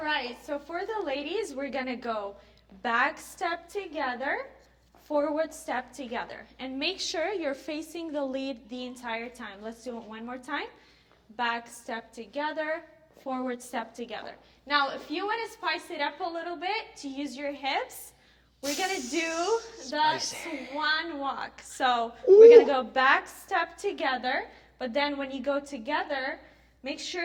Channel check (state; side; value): identical; both; correlation 1.00